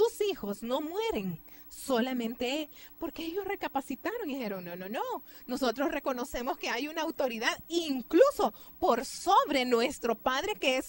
hijos no mueren, solamente él, porque ellos recapacitaron y dijeron, no, nosotros reconocemos que hay una autoridad incluso por sobre nuestro padre, que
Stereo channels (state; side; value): identical; both; correlation 1.00